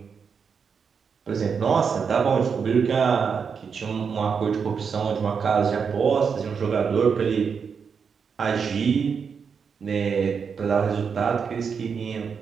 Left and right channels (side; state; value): left; quieter; 6.2 dB